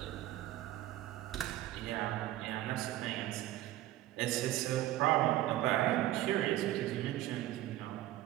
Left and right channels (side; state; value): left; quieter; 14.7 dB